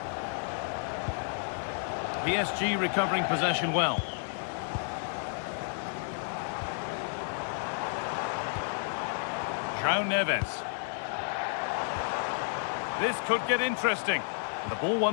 PSG recovering possession well. João Neves. This could get interesting. The ball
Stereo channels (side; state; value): right; silent; 57 dB below the other